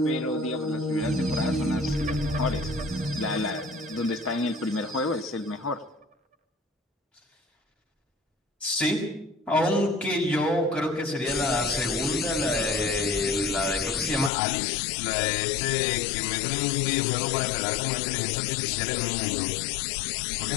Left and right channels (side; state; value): right; drops out; at 14.3 s